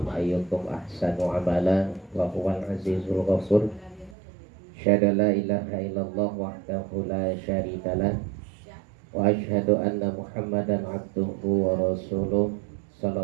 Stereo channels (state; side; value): drops out; left; at 4.2 s